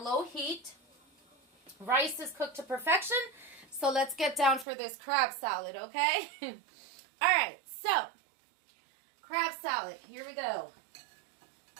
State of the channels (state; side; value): drops out; left; at 4.7 s